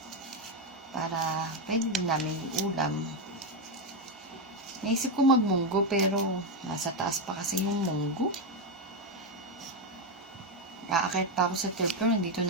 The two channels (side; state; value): both; normal; correlation 0.06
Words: Para pwede din namin ulam. Naisip ko magmunggo pero nasa taas pa kasi yung munggo. Aakit pa ako sa third floor. Nandito